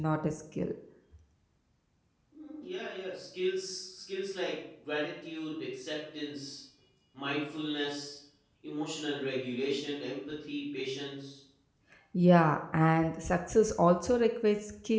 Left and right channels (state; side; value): identical; both; correlation 1.00